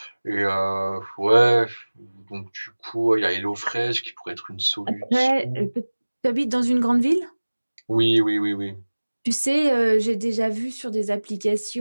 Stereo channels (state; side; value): inverted; both; correlation -1.00